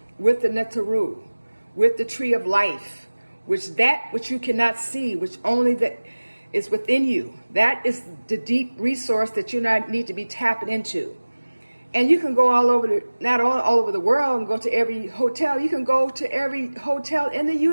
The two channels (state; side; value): inverted; both; correlation -1.00